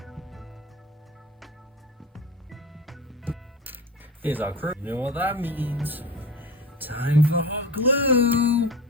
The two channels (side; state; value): both; normal; correlation 0.31